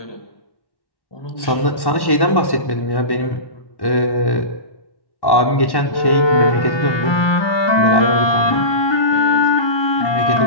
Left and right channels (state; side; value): late; right; 1.1 ms